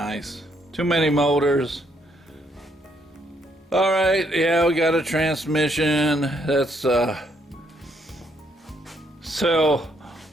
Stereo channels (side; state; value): both; normal; correlation 0.72